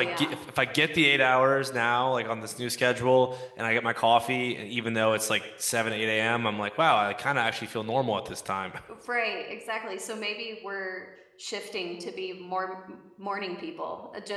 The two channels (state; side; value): identical; both; correlation 1.00